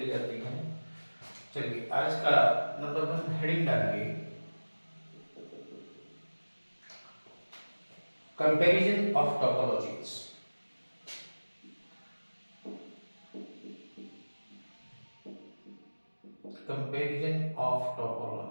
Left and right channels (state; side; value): inverted; both; correlation -1.00